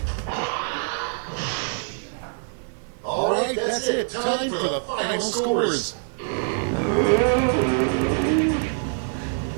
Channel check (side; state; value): left; silent; 55 dB below the other